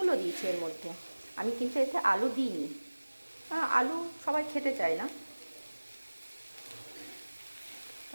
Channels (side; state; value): both; inverted; correlation -1.00